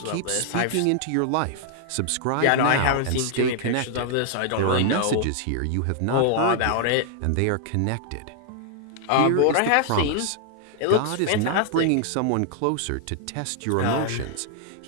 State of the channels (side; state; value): both; different; correlation 0.00